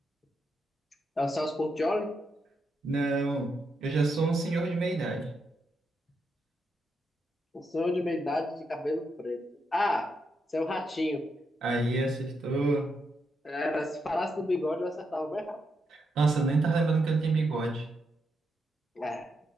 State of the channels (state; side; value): normal; both; correlation 0.82